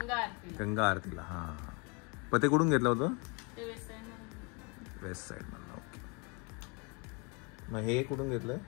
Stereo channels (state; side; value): quieter; right; 31.0 dB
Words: आरतीला. गंगा आरतीला. हा, पण ते कुठून घेतलं होतं? ते वेस्ट साईड मधून. वेस्ट साईड मधलं. ओके. मग हे कुठून घेतलंय?